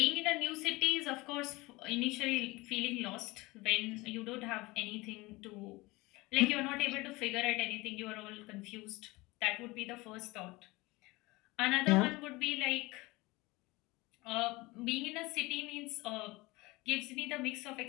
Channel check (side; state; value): right; quieter; 22.2 dB